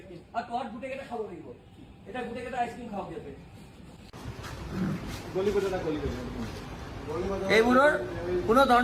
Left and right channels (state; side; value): identical; both; correlation 1.00